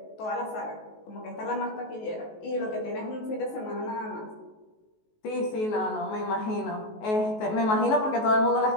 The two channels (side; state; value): right; late; 19 ms